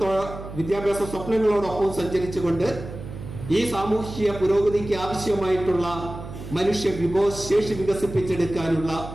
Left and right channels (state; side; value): noise; right; hum, 11 dB below the sound